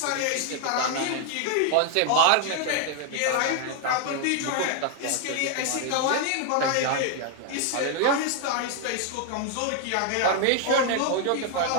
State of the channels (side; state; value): both; different; correlation 0.00